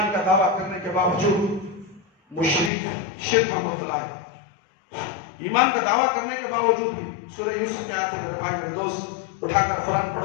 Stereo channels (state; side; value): drops out; right; at 2.7 s